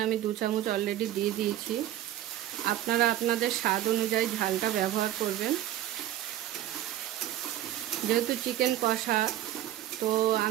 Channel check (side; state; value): left; quieter; 12.9 dB